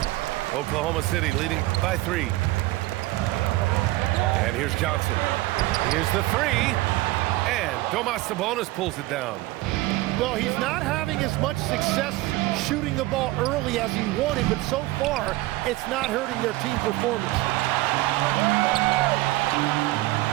Oklahoma City leading by 3. And here's Johnson. Here's the 3. And Domas Sabonis pulls it down. Well, he's not having as much success shooting the ball early as he wanted, but so far, it's not hurting their team performance.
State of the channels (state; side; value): quieter; left; 18.9 dB